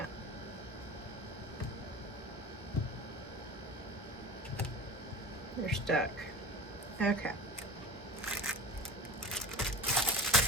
They're stuck. Okay.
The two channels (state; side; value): normal; both; correlation 0.33